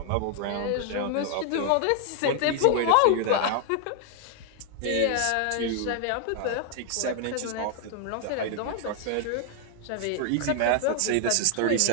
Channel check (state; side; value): different; both; correlation 0.00